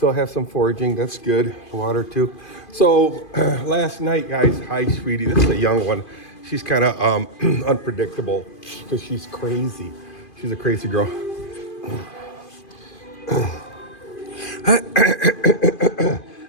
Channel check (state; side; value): late; right; 2.5 ms